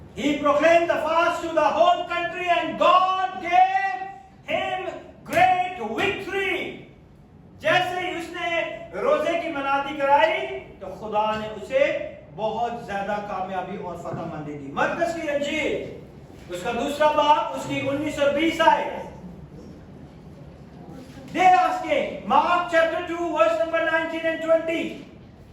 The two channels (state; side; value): identical; both; correlation 1.00